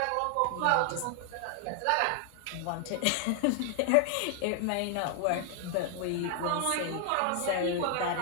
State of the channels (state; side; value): different; both; correlation 0.00